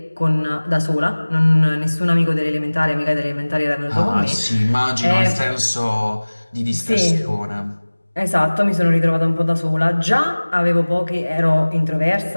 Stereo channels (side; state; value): both; inverted; correlation -1.00